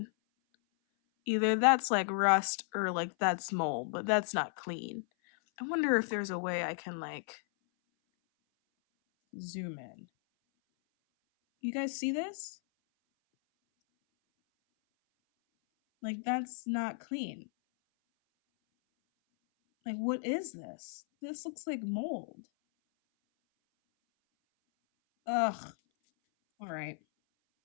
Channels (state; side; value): silent; right; 55 dB below the other